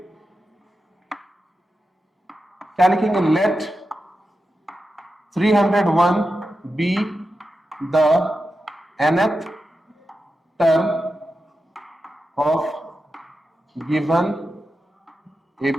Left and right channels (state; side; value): normal; both; correlation 0.90